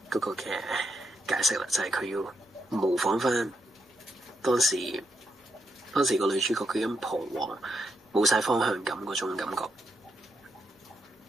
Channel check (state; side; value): normal; both; correlation 0.81